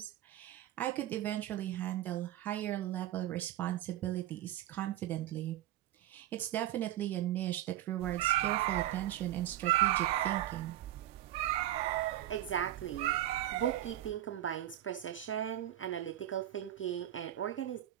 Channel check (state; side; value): quieter; left; 13.4 dB